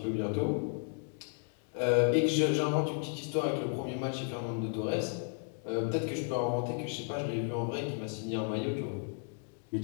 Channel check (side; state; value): right; silent; 55 dB below the other